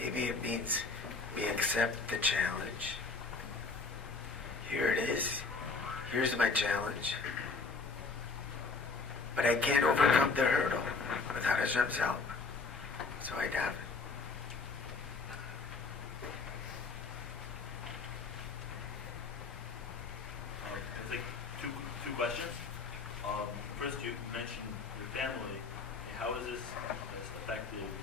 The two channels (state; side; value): quieter; right; 4.3 dB